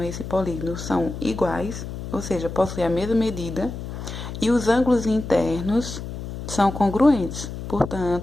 esse polígono são iguais, ou seja, possuem a mesma medida, e os ângulos internos são congruentes.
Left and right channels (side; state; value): left; noise; hum, 8 dB below the sound